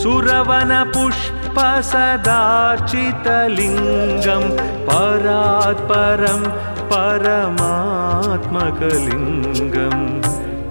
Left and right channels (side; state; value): both; inverted; correlation -1.00